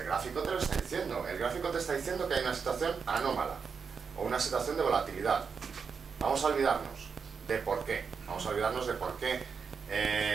gráfico te lo está diciendo, el gráfico te está diciendo que hay una situación anómala, o una situación de volatilidad. Vamos a olvidarnos de por qué. Vamos a olvidarnos de por qué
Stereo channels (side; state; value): left; quieter; 5.8 dB